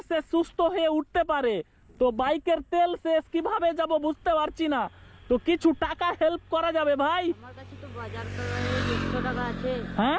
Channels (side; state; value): both; identical; correlation 1.00